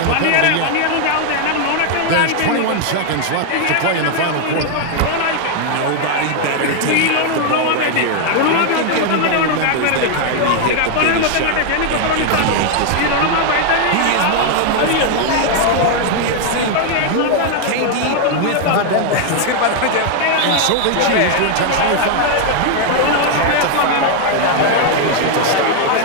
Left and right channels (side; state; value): both; different; correlation 0.00